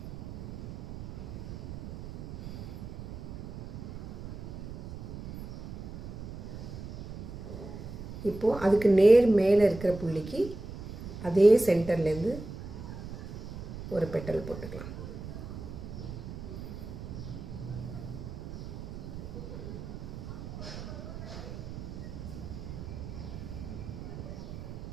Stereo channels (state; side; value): noise; right; rumble, 10 dB below the sound